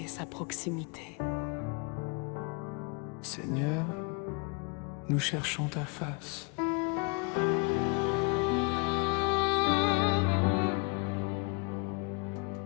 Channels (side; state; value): right; quieter; 33.1 dB